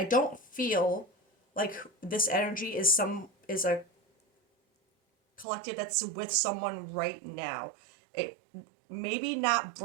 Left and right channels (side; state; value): left; drops out; at 5.5 s